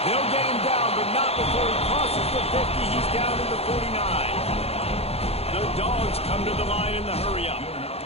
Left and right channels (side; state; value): right; late; 0.29 ms